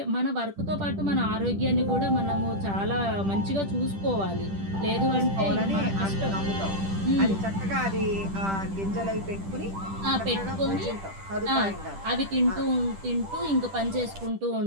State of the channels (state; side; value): late; left; 10 ms